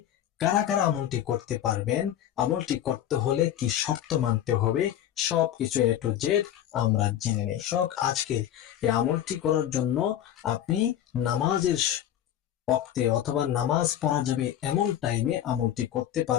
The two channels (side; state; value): right; quieter; 11.3 dB